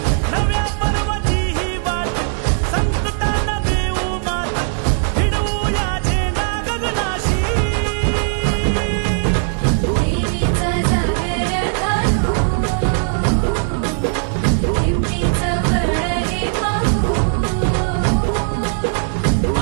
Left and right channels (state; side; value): silent; left; 62 dB below the other